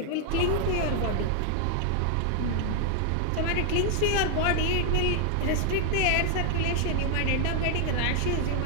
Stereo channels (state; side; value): different; both; correlation 0.00